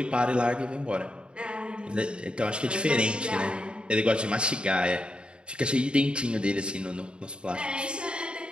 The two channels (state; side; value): late; left; 0.053 ms